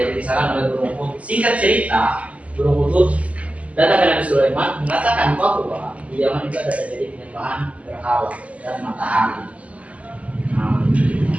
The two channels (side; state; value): left; late; 0.067 ms